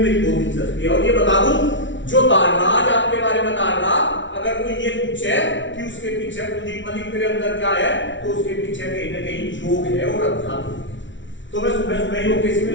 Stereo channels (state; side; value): late; right; 0.55 ms